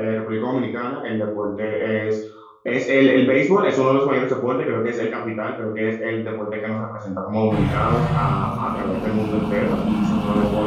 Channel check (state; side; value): identical; both; correlation 1.00